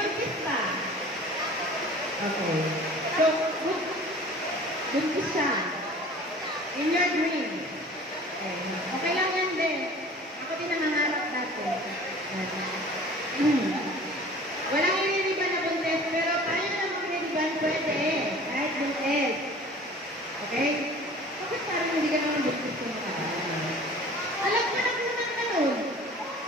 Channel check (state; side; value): normal; both; correlation 0.45